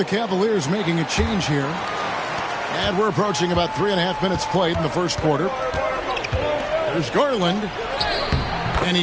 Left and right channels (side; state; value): both; identical; correlation 1.00